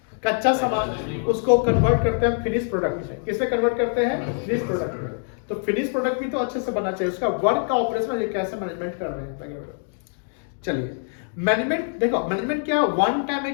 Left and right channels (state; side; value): silent; right; 58 dB below the other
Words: कच्चा सामान, उसको कन्वर्ट करते हैं फिनिश प्रोडक्ट में। किसमें कन्वर्ट करते हैं? फिनिश प्रोडक्ट में। तो फिनिश प्रोडक्ट भी तो अच्छे से बनना चाहिए, उसका वर्क का ऑपरेशन ये कैसे मैनेजमेंट कर रहे हैं। चलिए, मैनेजमेंट देखो, मैनेजमेंट क्या वन टाइम है